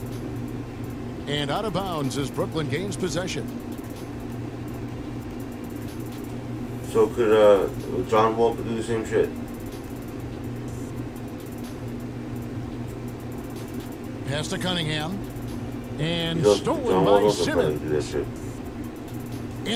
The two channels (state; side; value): identical; both; correlation 1.00